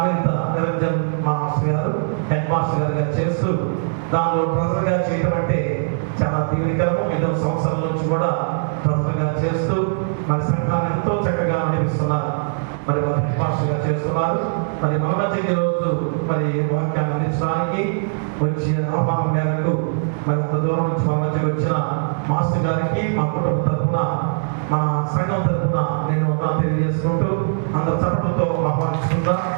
నిరంజన్ మాస్టర్ గారు, హెడ్ మాస్టర్ గారుగా చేస్తూ దానిలో ట్రెజర్గా చేయడం అంటే చాలా దీవెనకరము. 5వ సంవత్సరాల నుంచి కూడా ట్రెజర్గా చేస్తూ మరి సంఘాన్ని ఎంతో చక్కగా నడిపిస్తున్నారు. మరి వారు హెడ్ మాస్టర్గా చేస్తున్నారు. మరి మన మధ్యకి రోజు మరి వాక్యాన్ని అందించడానికి వచ్చి ఆహ్వానం మేరకు మరి అంత దూరం నుంచి మా మధ్యకి వచ్చిన మాస్టర్ గారికి మా కుటుంబ తరఫున మన సంఘం తరఫున నేను తెలియజేసుకుంటూ అందరు చప్పట్లతో ఆహ్వానిస్తుందా.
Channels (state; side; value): silent; left; 65 dB below the other